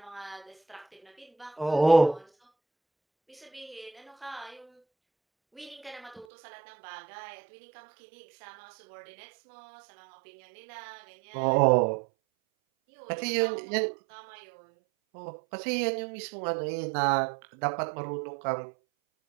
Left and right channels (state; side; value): drops out; left; at 6.2 s